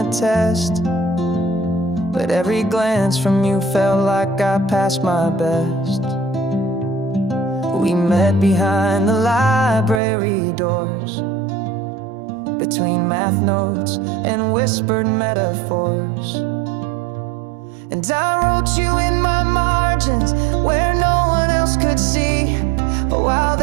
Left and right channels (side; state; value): left; drops out; at 10.0 s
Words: test, but every glance from you felt like I passed my best. We met behind the library doors, between math notes and whispered metaphors. And I wrote you in my margins where no one else could see, while